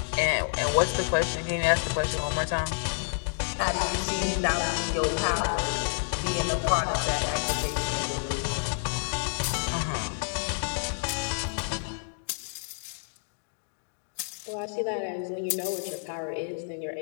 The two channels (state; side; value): silent; right; digital silence